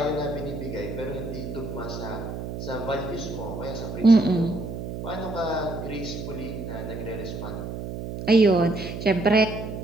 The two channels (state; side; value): noise; right; hum, 7 dB below the sound